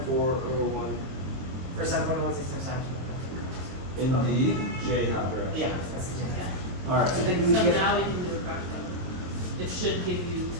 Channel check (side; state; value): left; late; 23 ms